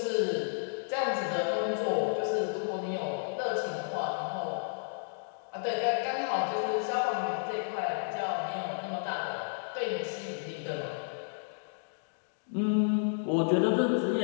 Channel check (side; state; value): right; silent; digital silence